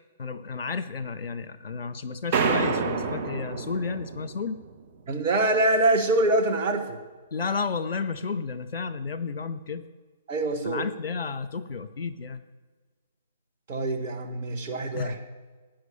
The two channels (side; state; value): both; inverted; correlation -0.32